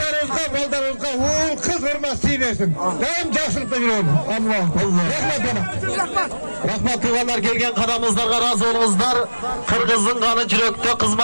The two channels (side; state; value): both; inverted; correlation -1.00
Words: baldarımızga, oğul kız hürmesi versin. Daim jakşılıkta yürüyorum. Allah Allah. Rahmet bana. Rahmet tuğalar gelgen kadamızlarga razı olunuzlar. Kırgızın kanı yürekte